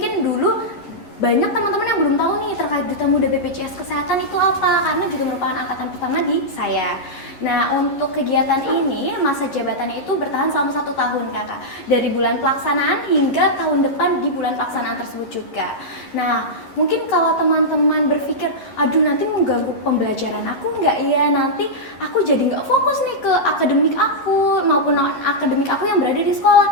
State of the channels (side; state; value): right; late; 11 ms